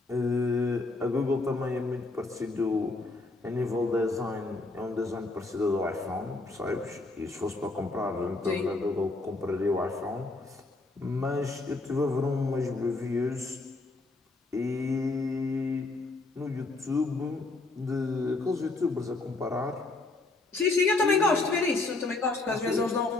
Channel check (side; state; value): right; quieter; 3.3 dB